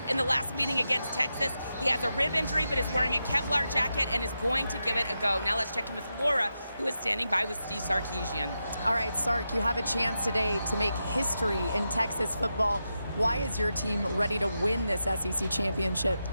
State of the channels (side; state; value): both; inverted; correlation -0.88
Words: in the last meeting against Texas. He has a rib injury, but is wearing a Kevlar jacket and is going to give it a go. Now let's check in with Laura, who is standing by with Steve Sarkisian. All right, Sark, you have a chance today to make history in Texas football. Why is your team ready to win this SEC championship?